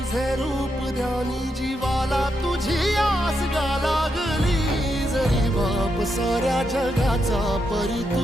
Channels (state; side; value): normal; both; correlation 0.82